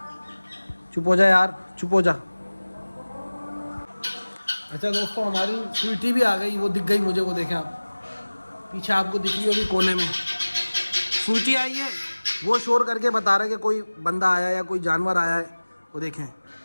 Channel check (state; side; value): inverted; both; correlation -1.00